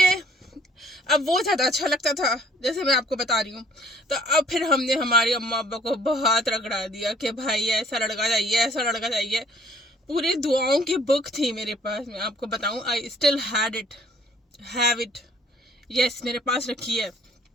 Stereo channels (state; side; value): normal; both; correlation 0.59